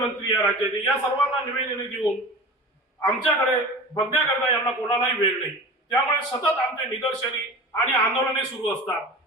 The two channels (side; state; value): both; normal; correlation 0.34